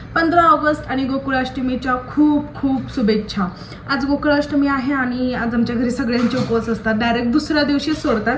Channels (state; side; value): identical; both; correlation 1.00